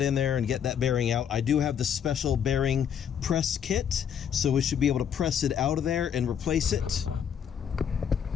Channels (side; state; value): right; quieter; 8.3 dB